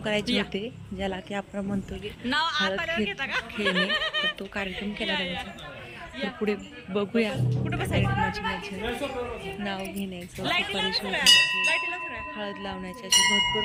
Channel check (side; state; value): both; identical; correlation 1.00